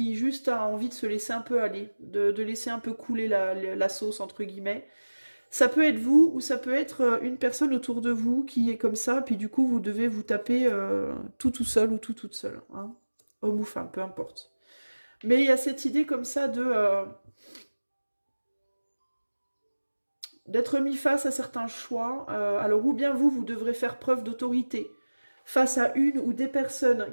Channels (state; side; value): inverted; both; correlation -1.00